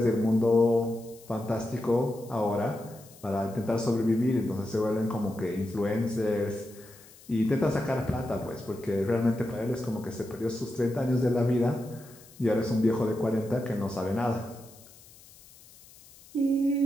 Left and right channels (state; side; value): noise; left; hiss, 23 dB below the sound